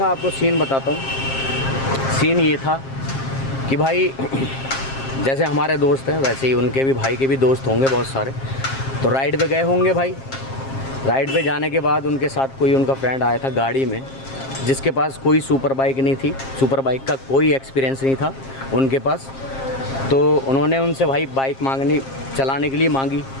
आपको सीन बताता हूँ। सीन ये था कि भाई जैसे हमारे दोस्त हैं वैसे ही उनके भी भाई के भी दोस्त होंगे बहुत सारे। तो राइड पे गए होंगे भाई। राइड पे जाने के बाद उनके साथ कोई उनका फ्रेंड आया था गाड़ी में, जिसके पास कोई सुपर बाइक नहीं थी, सुपर बाइक का कोई एक्सपीरियंस नहीं था उनके पास। तो उन्होंने उनसे भाई बाइक मांगनी चलाने के लिए मांगी,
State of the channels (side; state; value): right; late; 7.5 ms